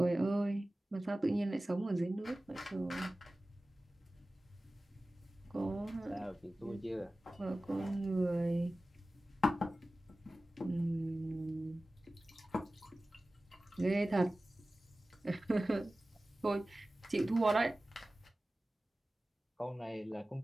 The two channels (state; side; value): normal; both; correlation 0.96